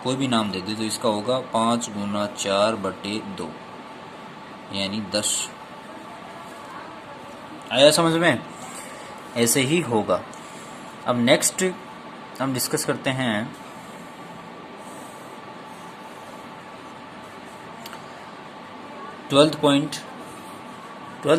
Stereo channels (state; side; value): identical; both; correlation 1.00